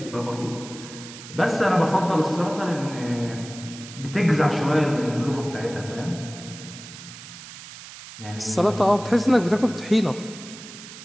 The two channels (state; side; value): noise; right; hiss, 15 dB below the sound